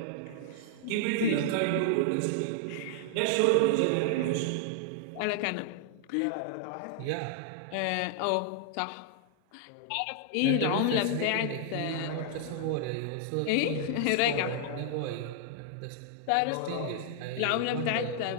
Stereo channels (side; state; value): both; different; correlation -0.01